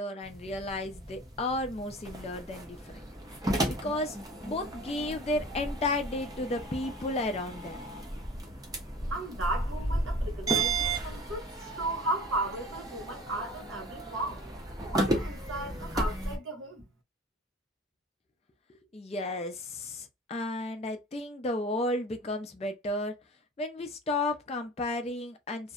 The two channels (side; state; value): both; normal; correlation 0.42